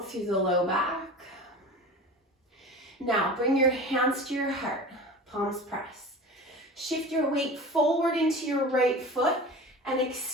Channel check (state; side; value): normal; both; correlation 0.35